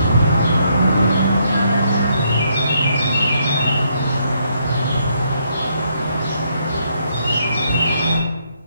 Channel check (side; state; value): both; inverted; correlation -0.74